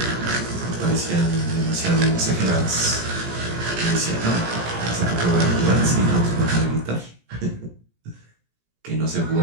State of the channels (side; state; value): left; late; 17 ms